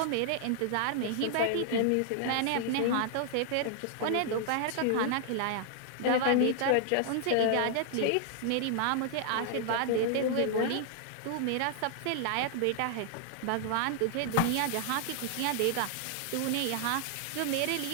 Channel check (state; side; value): different; both; correlation 0.00